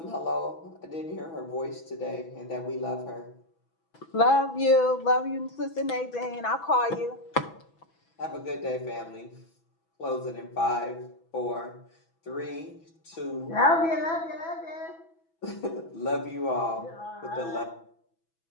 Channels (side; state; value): right; late; 6.1 ms